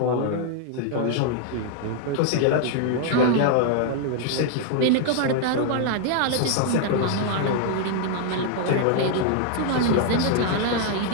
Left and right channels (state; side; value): different; both; correlation 0.00